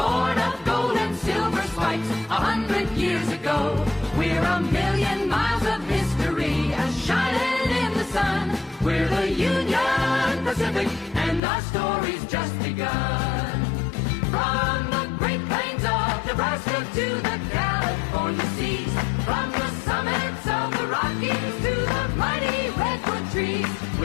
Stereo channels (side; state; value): right; drops out; at 11.4 s